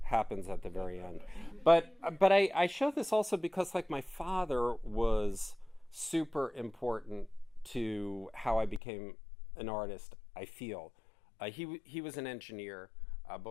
happens at the very end. But I show this also because like my father was super important to how I became an artist, I feel. He was an engineer.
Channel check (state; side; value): drops out; right; at 8.8 s